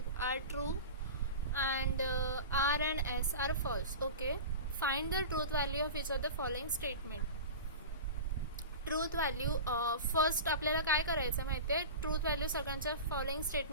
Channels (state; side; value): inverted; both; correlation -0.31